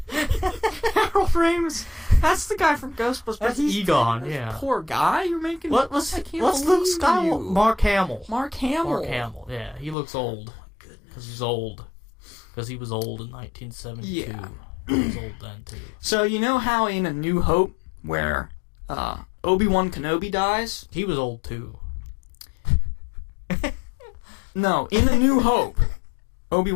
Harold Ramis. That's the guy from Ghostbusters. That's Egon, yeah. Poor guy you're making. What's Luke Skywalker? Mark Hamill. Mark Hamill, yeah. He looks old. Because he's old. Because he was old in 1972. Yeah. He was old then, too. So, you know how in A New Hope, where Obi-Wan Kenobi dies? He was old, too. No, in A New Hope,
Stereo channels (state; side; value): drops out; right; at 10.0 s